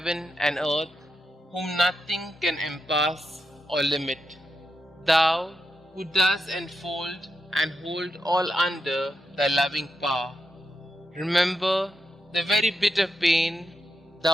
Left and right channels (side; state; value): both; normal; correlation 0.86